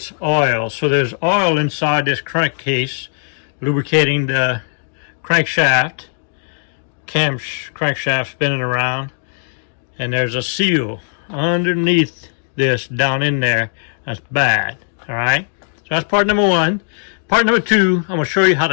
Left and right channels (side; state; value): right; silent; digital silence